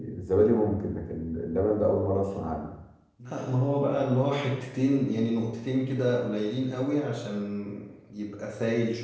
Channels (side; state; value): both; identical; correlation 1.00